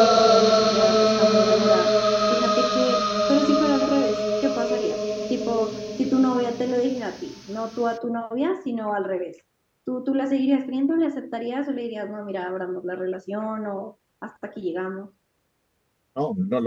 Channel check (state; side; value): identical; both; correlation 1.00